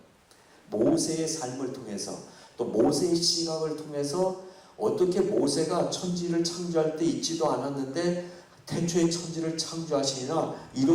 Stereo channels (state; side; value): identical; both; correlation 1.00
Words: 모세의 삶을 통해서 또 모세의 시각을 통해서 어떻게 모세가 천지를 창조할 때 있지도 않았는데 태초에 천지를 창조하시니라